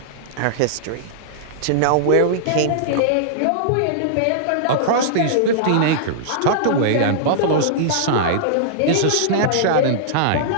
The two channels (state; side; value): different; both; correlation -0.02